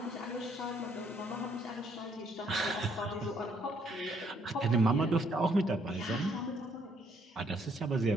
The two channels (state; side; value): normal; both; correlation 0.68